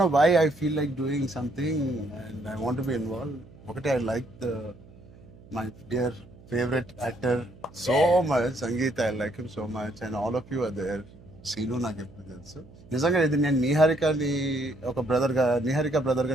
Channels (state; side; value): noise; right; hum, 22 dB below the sound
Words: know why I feel like doing something and I want be involve. ఒకటి, I like my dear favourite actor so much, Sangeet. I like him so much and all of you are there. Seenu నాకు ఎప్పుడు తెలుసు. నిజంగా ఇది నేను నిహారికని ఒక బ్రదర్గా, నిహారిక బ్రదర్గా